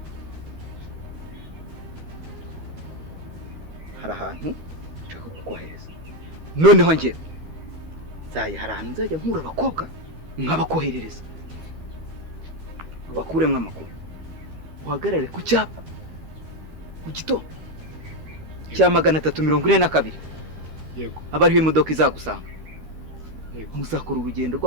hari ahantu nshaka kukohereza. Noneho njye hari ahantu nzajya nkura abakobwa nkabakoherereza, bakuremwe amakuru. Uhagarare ku cyapa mu gitondo cya 342. Yego. Abariho imodoka izagusanga. Yego. Muzakora urugendo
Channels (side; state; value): left; late; 13 ms